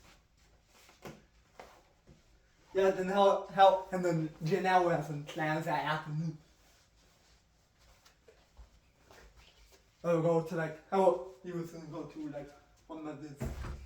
Yeah, then and then Janelle has some plans that afternoon. Go to how he was gonna go to one of his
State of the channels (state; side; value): identical; both; correlation 1.00